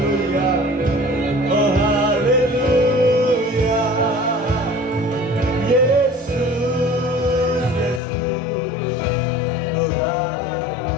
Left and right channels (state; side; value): drops out; right; at 8.0 s